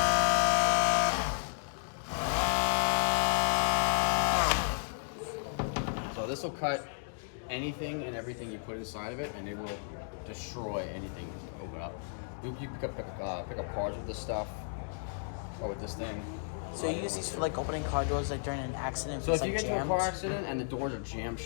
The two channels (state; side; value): silent; right; digital silence